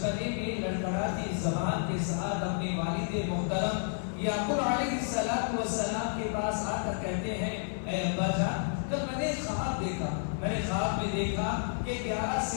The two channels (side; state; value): right; silent; 57 dB below the other